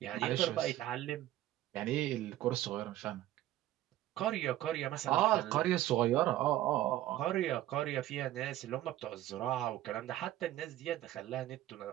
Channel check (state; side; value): quieter; left; 14.3 dB